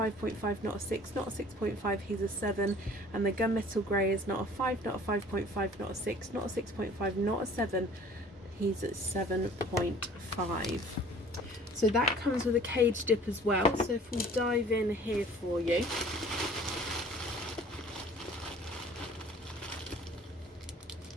not a 6, not a 6.5. He's a 7. And the gunmetal grey is not a 5, not a 5.5, not a 6, not a 6.5, not a 7. He's at 7.5. So that comes with a cage dip as well. So if we dive in here for you.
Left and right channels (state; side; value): normal; both; correlation 0.51